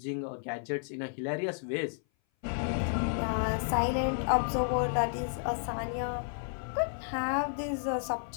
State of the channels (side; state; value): right; silent; 56 dB below the other